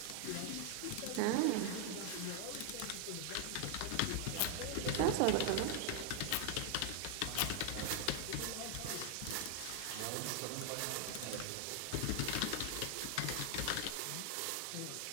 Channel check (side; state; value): both; different; correlation 0.00